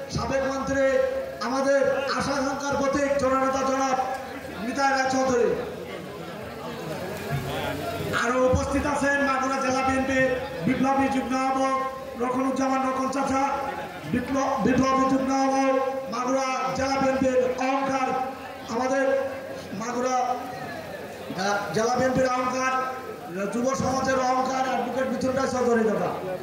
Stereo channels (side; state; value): both; identical; correlation 1.00